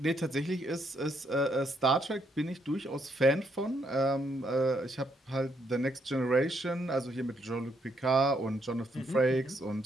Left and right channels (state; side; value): normal; both; correlation 0.74